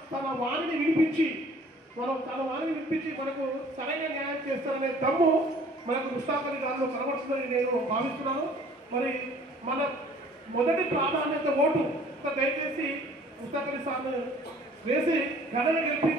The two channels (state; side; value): normal; both; correlation 0.53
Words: తన వాణిని వినిపించి మనకు సరైన న్యాయం చేస్తారనే దమ్ము మనకు ముస్తాక్ అలీ గారిలో కనబడుతుందని నేను భావిస్తున్నాను. మరి మన మొదటి ప్రాధాన్యత ఓటు దయచేసి ముస్తాక్ అలీ సార్ను వేసి ఘనన